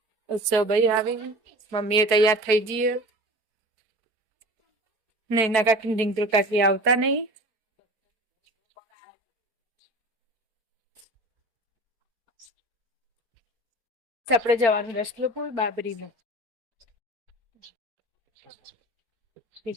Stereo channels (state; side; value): late; left; 4.5 ms